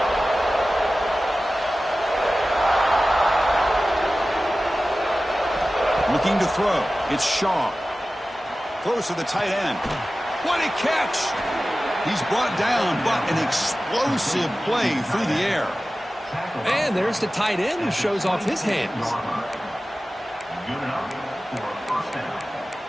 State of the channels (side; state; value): both; normal; correlation 0.96